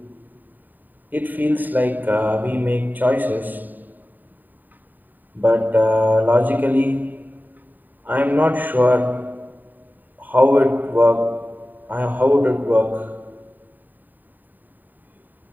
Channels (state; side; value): late; left; 0.088 ms